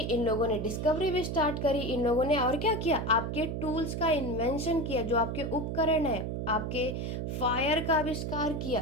लोगों ने डिस्कवरी भी स्टार्ट करी। इन लोगों ने और क्या किया, आपके टूल्स का इन्वेंशन किया, जो आपके उपकरण है, आपके फायर का आविष्कार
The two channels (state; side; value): noise; right; hum, 3 dB below the sound